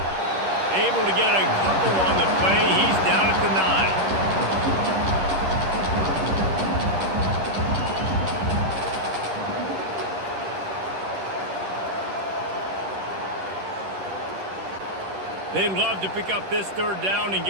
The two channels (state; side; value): late; left; 10 ms